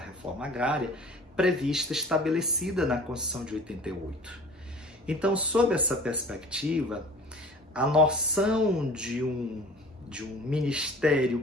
agrária prevista, estabelecida na Constituição de 88. Então, sob essa perspectiva, a noção de um ministério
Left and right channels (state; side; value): normal; both; correlation 0.45